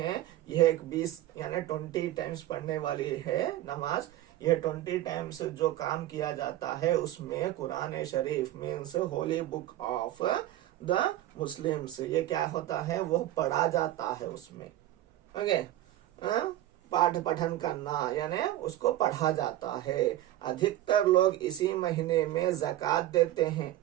यह एक 20 यानी 20 टाइम्स पढ़ने वाली है नमाज। यह 20 टाइम्स जो काम किया जाता है उसमें Quran Sharif means holy book of the Muslims, ये क्या होता है, वो पढ़ा जाता है उसमें। ओके, पाठ पठन करना यानी उसको पढ़ा जाता है। अधिकतर लोग इसी महीने में ज़कात देते हैं।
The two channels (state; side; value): quieter; left; 14.0 dB